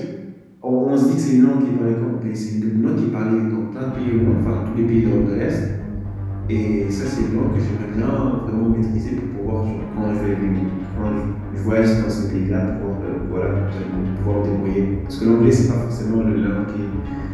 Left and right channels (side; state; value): both; identical; correlation 1.00